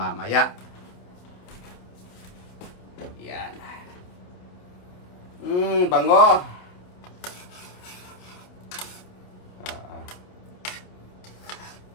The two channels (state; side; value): late; right; 28 ms